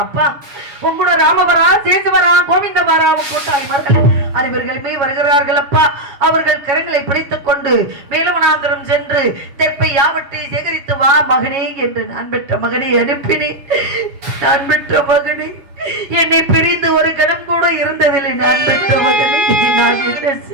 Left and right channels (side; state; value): left; late; 7.2 ms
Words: அப்பா, உங்களோட ராமவரா, சேசுவரா, கோவிந்தவரா, கூட்டாளிமார்கள் அனைவர்களுமே வருகிறார்கள் அப்பா. அவர்கள் கரங்களை பிடித்துக் கொண்டு மேலவனாந்தரம் சென்று தெற்பை யாவற்றை சேகரித்து வா மகனே என்று நான் பெற்ற மகனை அனுப்பினேன். நான் பெற்ற மகனே, என்னை பிரிந்து ஒரு கணம் கூட இருந்ததில்லை. நான் பெற்ற மகனை நான் என்ன